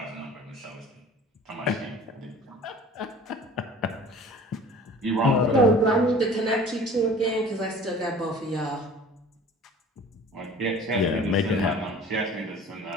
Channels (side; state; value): both; normal; correlation 0.45